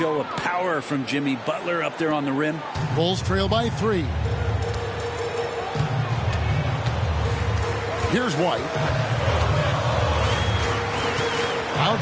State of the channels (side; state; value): both; identical; correlation 1.00